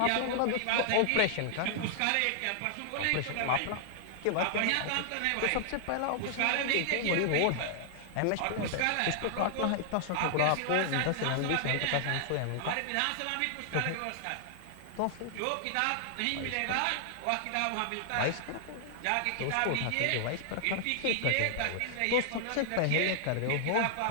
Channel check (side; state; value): both; different; correlation -0.01